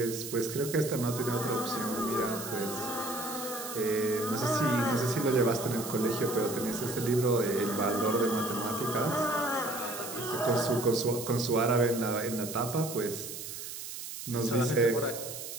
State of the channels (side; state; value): right; noise; hiss, 9 dB below the sound